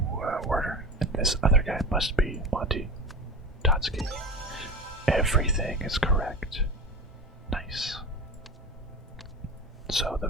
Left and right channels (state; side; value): normal; both; correlation 0.31